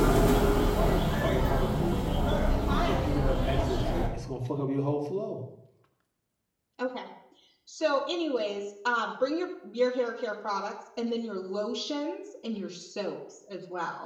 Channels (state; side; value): identical; both; correlation 1.00